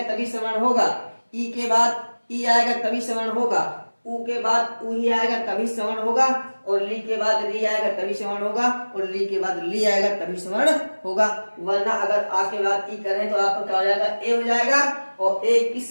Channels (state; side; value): inverted; both; correlation -1.00